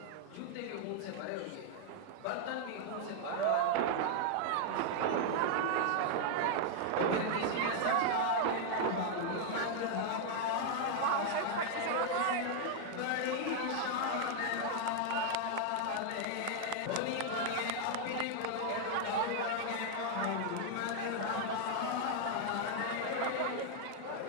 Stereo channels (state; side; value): different; both; correlation 0.00